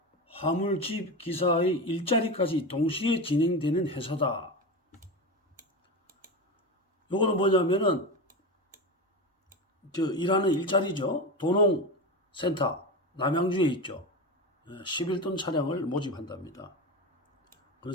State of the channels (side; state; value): both; normal; correlation 0.21